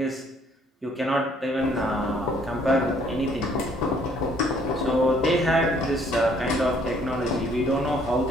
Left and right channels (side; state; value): both; normal; correlation 0.63